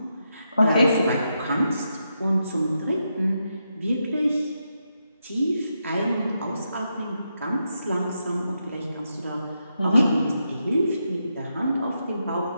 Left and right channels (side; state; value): both; inverted; correlation -0.84